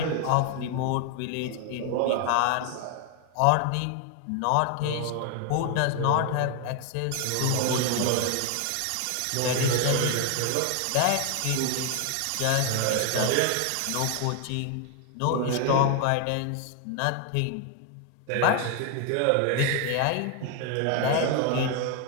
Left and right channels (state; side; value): different; both; correlation 0.00